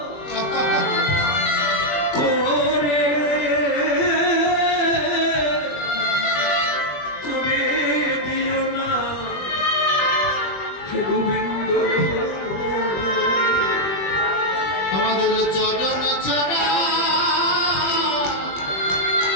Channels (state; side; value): late; right; 21 ms